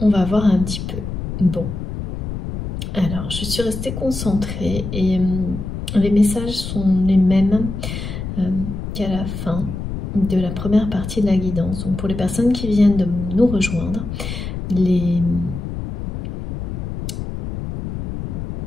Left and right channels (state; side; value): noise; left; rumble, 6 dB below the sound